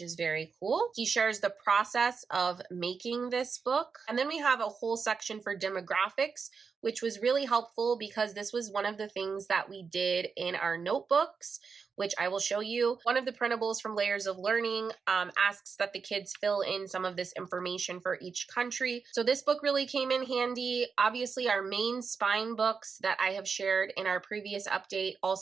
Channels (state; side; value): quieter; left; 5.5 dB